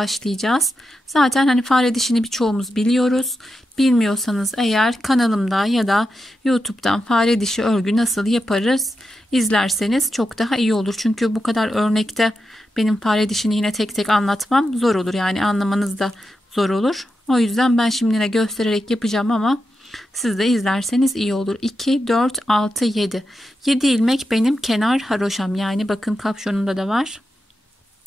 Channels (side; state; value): both; normal; correlation 0.88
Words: Zaten hani fare dişini birçoğumuz biliyoruz. Bilmiyorsanız eğer kanalımda ya da YouTube'dan fare dişi örgü nasıl yaparız izlerseniz çok daha iyi olur. Çünkü bu kadar örnekte benim fare dişini yine tek tek anlatmam zor olur. Yani anlamanız da zor olur. O yüzden ben şimdi yine göstererek yapacağım ama siz de izlerseniz iyi olur. 2, 4, 6, 7. 7 ilmek benim kenar haroşam. Yani bakın kapşonunda da var.